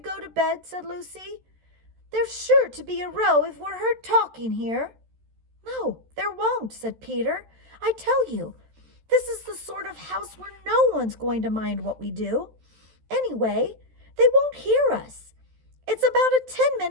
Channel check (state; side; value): late; left; 13 ms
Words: to bed?" said Lucy. "There's sure to be a row if we're heard talking here." "No, there won't," said Peter. "I tell you, this is the sort of house where no one's going to mind what we do. Anyway, they won't hear us. It's about a